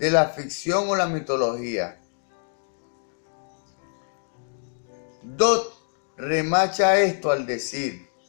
la ficción o la mitología. Dodd remacha esto al decir:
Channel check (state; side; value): silent; right; 59 dB below the other